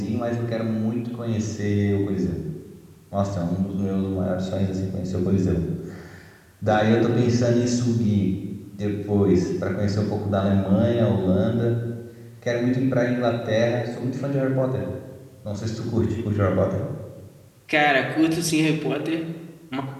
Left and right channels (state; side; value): identical; both; correlation 1.00